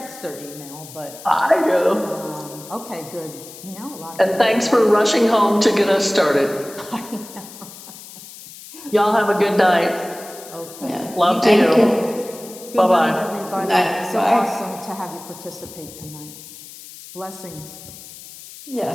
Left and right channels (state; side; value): noise; left; hiss, 16 dB below the sound